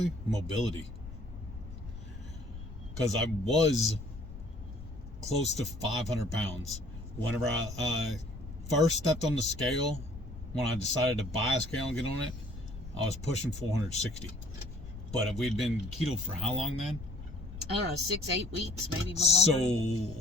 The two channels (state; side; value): noise; left; rumble, 12 dB below the sound